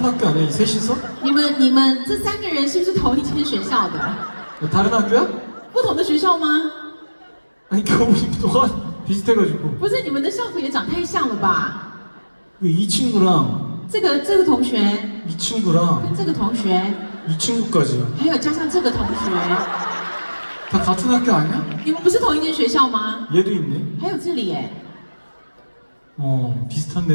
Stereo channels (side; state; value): both; inverted; correlation -1.00